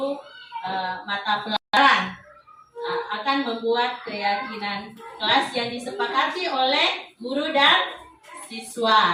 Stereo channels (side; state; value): both; identical; correlation 1.00